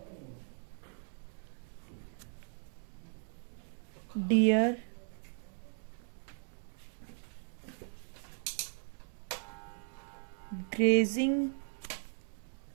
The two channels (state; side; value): silent; left; 53 dB below the other